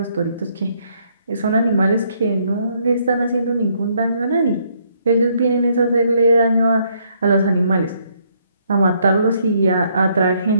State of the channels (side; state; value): both; inverted; correlation -0.70